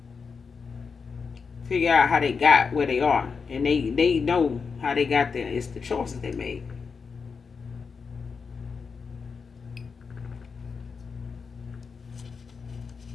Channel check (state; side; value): quieter; right; 5.4 dB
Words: figure out how they got where they are. And they know how they got there. It's the choices they made.